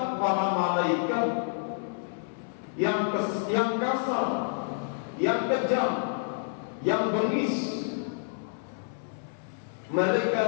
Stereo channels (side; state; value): right; silent; 59 dB below the other